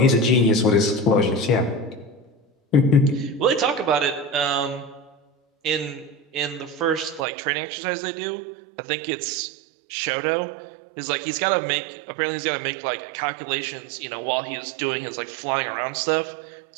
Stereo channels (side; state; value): left; drops out; at 7.2 s